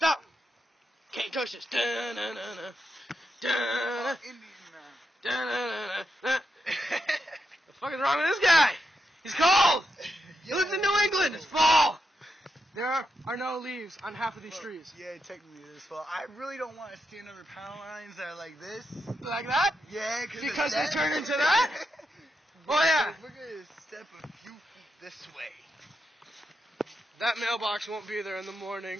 Can't touch this. Da-na-na-na. Da-na. Da-na-na-na. The fuck is wrong with this guy? He's cold. He lives in New England. It's fall. There are no leaves on half of these trees. Yeah, technically it is fall. I really don't want to stand under power lines that are like this. Like that? Yeah, because they turn into that? Oh yeah. We're going to step a few feet this way. That mailbox won't be there in the morning.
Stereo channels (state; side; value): normal; both; correlation 0.84